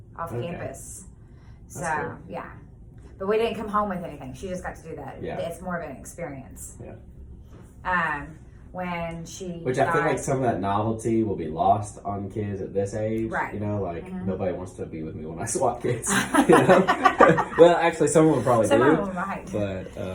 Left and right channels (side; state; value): both; identical; correlation 1.00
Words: off Okay. campus. So That's cool. yeah, but we didn't come home with anything. She just got to do that. Yeah. It's more of an experience. Yeah. When she Which I feel got- like some of that novelty will be lost on kids at this age. Right. You know, like Mhm. nobody wants to be with me when I swat kids. You know? Well, actually, some of them probably some do. of them might.